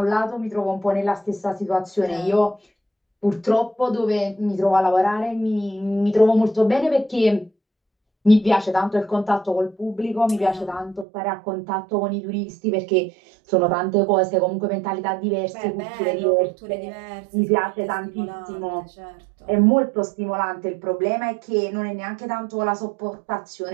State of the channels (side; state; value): left; drops out; at 11.1 s